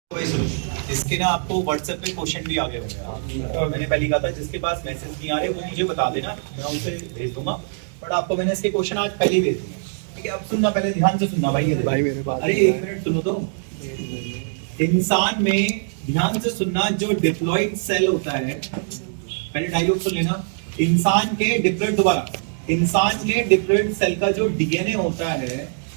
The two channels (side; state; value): left; silent; digital silence